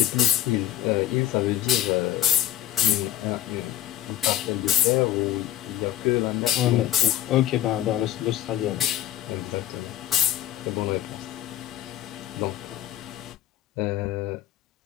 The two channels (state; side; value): quieter; right; 13.0 dB